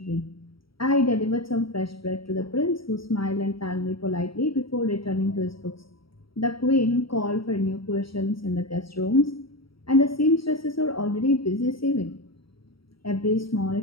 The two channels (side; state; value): right; late; 0.75 ms